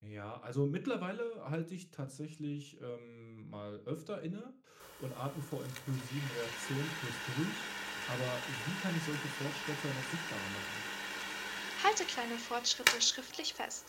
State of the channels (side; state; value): both; identical; correlation 1.00